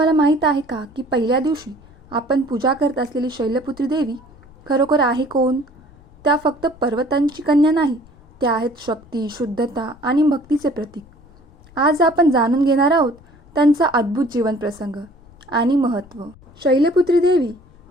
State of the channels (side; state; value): left; noise; rumble, 25 dB below the sound